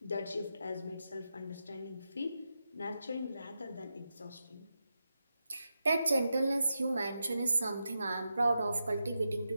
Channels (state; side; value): inverted; both; correlation -0.88